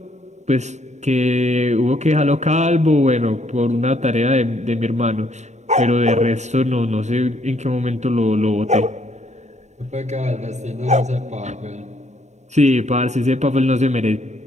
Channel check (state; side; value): late; left; 0.34 ms